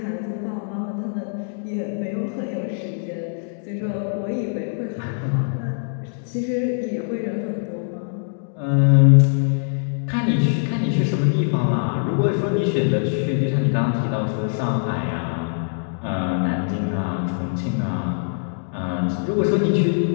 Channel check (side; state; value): right; silent; digital silence